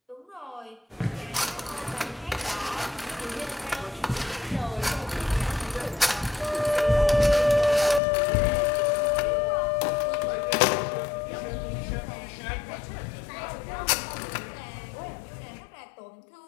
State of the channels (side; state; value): right; drops out; at 8.0 s